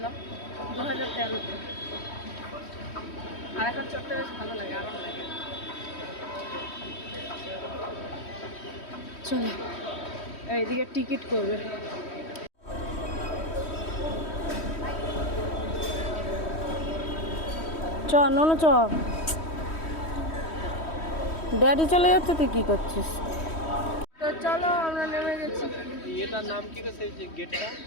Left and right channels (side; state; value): right; late; 3.1 ms